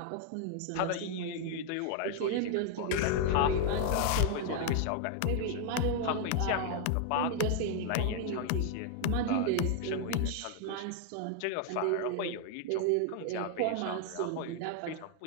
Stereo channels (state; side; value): different; both; correlation 0.00